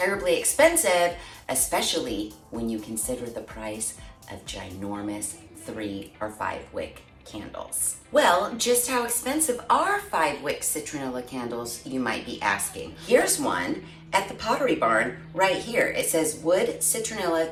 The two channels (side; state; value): both; identical; correlation 1.00